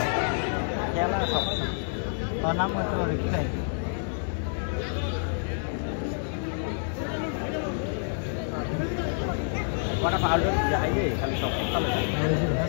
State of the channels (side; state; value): right; silent; 59 dB below the other